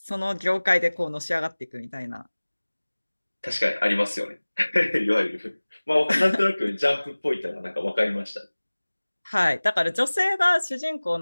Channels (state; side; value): inverted; both; correlation -1.00